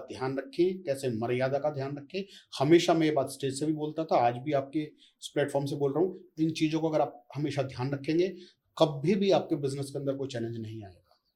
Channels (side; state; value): both; identical; correlation 1.00